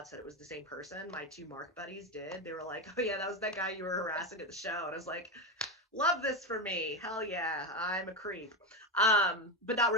that it was the same person. My 2 Mark buddies did. They were like, "Oh yeah, that was that guy you were harassing at the show." And I was like, "Love this for me. Hell yeah, I'm a creep." But not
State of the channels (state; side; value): normal; both; correlation 0.14